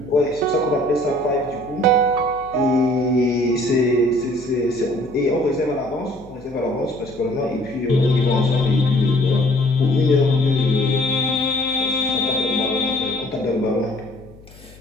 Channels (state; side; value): noise; left; hum, 22 dB below the sound